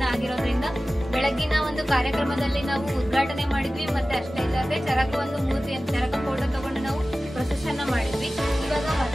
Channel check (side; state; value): both; normal; correlation 0.96